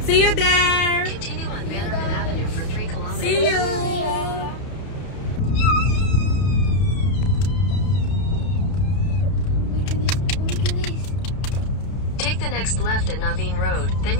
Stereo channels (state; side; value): late; right; 31 ms